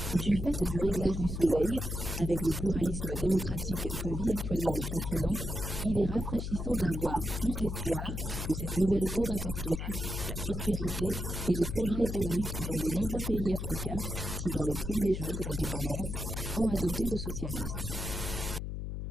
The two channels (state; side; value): noise; left; hum, 4 dB below the sound